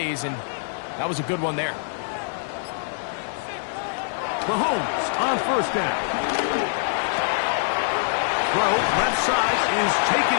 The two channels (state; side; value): silent; right; 62 dB below the other